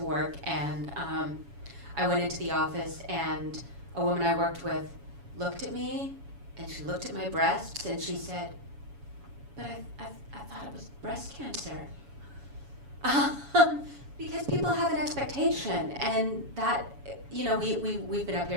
work, and I went into the office, and a woman I worked with looked at me, and she looked at my breasts, and she said, "But I thought it was breast cancer." because people have an expectation, and that, we've been up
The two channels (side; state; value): left; late; 7.1 ms